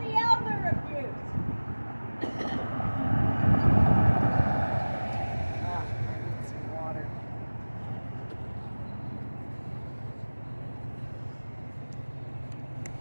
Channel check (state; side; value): inverted; both; correlation -1.00